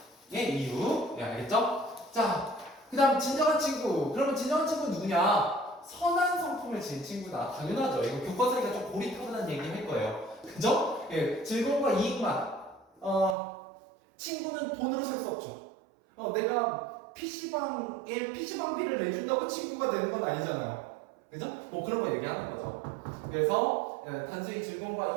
이유. 예, 알겠죠? 자, 그 다음 진정한 친구. 그러면 진정한 친구는 누구냐? 선한 성품을 지닌 친구다. 당연하죠. 이거 교과서니까 좀 고리타분한 얘기 할 거예요. 그죠? 예, 즐거움과 이익만. 친구는 돈으로 살 수 없죠. 내가 PC방비를 내준다고 친구가 되는 건 아니잖아요. 그죠? 뭐 그런 거 얘기하는 거죠. 그래서 단순히 즐거움과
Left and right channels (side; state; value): left; drops out; at 13.4 s